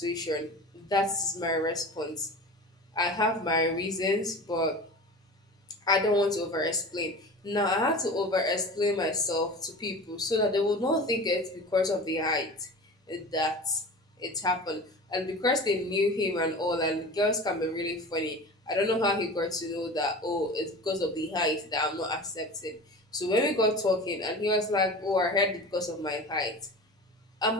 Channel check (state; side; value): normal; both; correlation 0.35